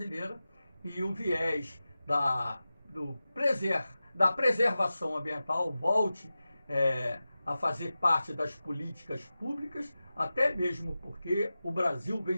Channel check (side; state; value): both; inverted; correlation -0.95